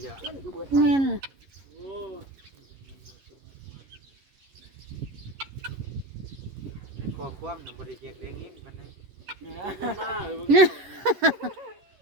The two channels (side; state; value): left; late; 11 ms